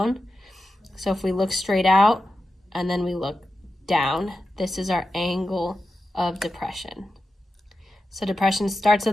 So if we look straight out and then we look down, this is our angle of depression. So depression starts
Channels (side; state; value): both; normal; correlation 0.91